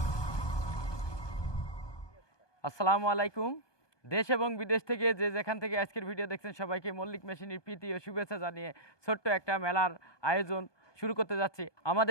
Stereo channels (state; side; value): late; right; 1.2 ms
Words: আসসালামু আলাইকুম। দেশ এবং বিদেশ থেকে যে যেখান থেকে আজকের ভিডিও দেখছেন সবাইকে মল্লিক মেশিনের প্রীতি ও শুভেচ্ছা জানিয়ে ছোট্ট একটা মেলার আয়োজন শুরু করতে যাচ্ছি।